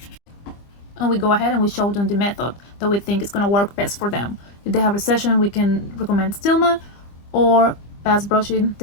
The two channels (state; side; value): late; right; 25 ms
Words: And we go ahead and we show them the method that we think is going to work best for them. If they have recession, we can recommend Stillman or fast brushing